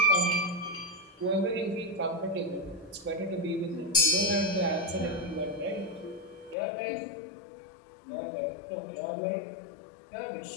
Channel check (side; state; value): right; drops out; at 6.6 s